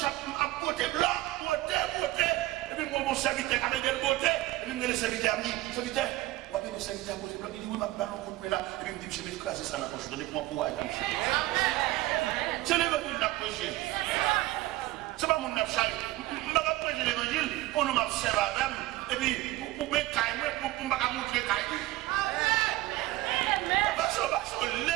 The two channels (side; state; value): left; quieter; 17.6 dB